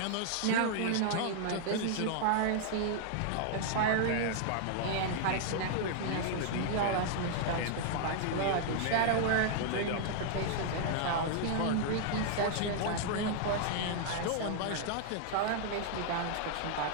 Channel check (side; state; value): both; different; correlation -0.01